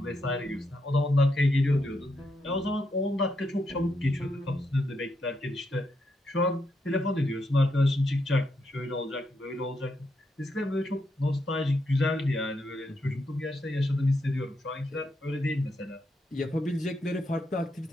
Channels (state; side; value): normal; both; correlation 0.81